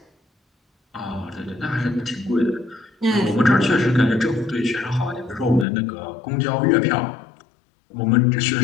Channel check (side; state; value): right; drops out; at 5.7 s